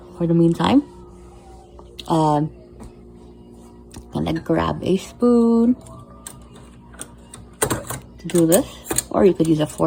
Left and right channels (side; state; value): both; identical; correlation 1.00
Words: for the meantime. Gonna grab a spoon to do this, or you could use a